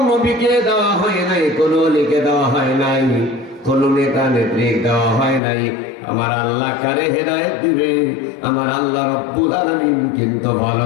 নবীকে দেওয়া হয় নাই, কোন ওলিকে দেওয়া হয় নাই, কোন নেতা নেত্রী দেওয়া হয় নাই। আমার আল্লাহ কারে হেদায়েত দিবে আমার আল্লাহ রব্বুল আলামিন কিন্তু ভালো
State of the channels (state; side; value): drops out; right; at 5.4 s